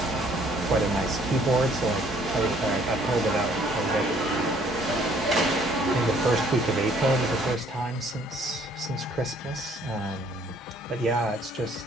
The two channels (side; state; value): both; normal; correlation 0.61